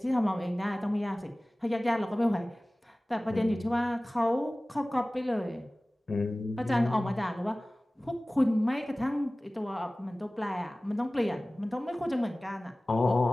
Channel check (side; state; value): both; normal; correlation 0.98